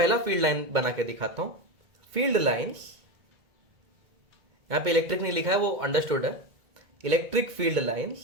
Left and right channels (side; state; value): left; late; 2.2 ms